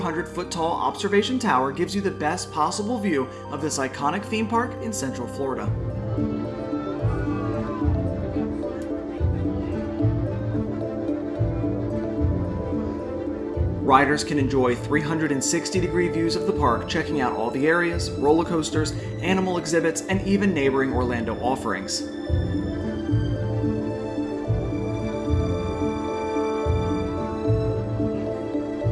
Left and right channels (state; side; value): identical; both; correlation 1.00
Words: tall observation tower gives you the best possible view of this iconic theme park in Central Florida. Riders can enjoy 360-degree views of the park, checking out all the areas, roller coasters, animal exhibits, and even neighboring Orlando offerings.